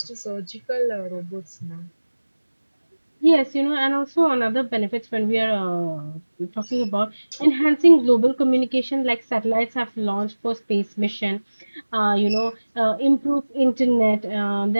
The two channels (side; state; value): both; inverted; correlation -1.00